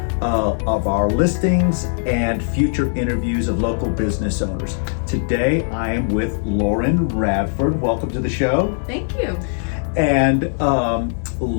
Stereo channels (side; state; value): right; silent; digital silence